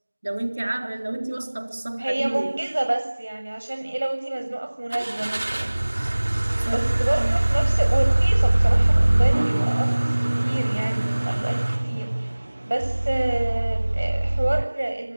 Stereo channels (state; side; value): inverted; both; correlation -1.00